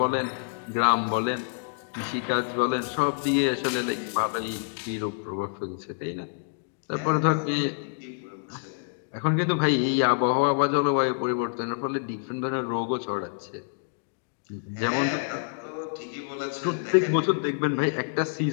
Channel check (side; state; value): right; silent; digital silence